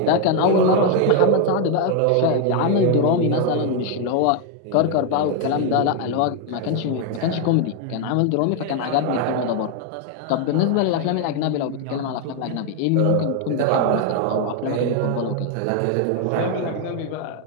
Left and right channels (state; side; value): different; both; correlation 0.01